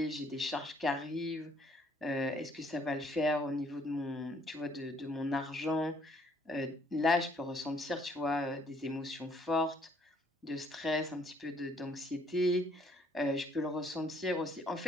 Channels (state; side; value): normal; both; correlation 0.64